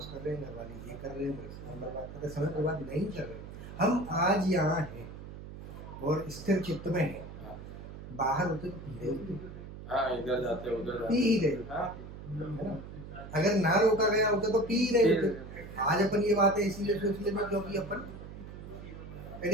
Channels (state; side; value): noise; right; hum, 12 dB below the sound